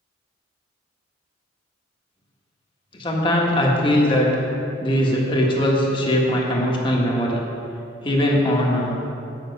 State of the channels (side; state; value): both; normal; correlation 0.58